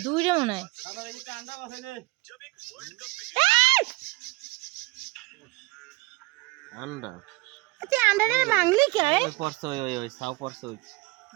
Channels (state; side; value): quieter; left; 22.6 dB